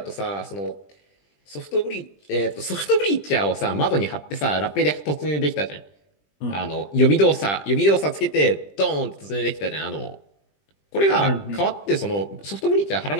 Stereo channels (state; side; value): late; right; 20 ms